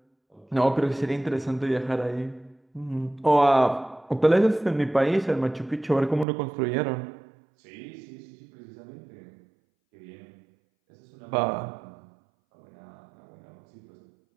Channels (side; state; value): left; drops out; at 6.2 s